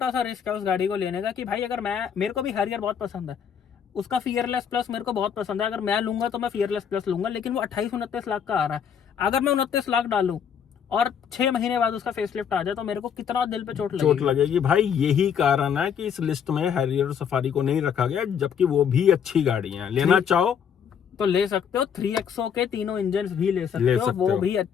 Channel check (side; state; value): right; quieter; 7.8 dB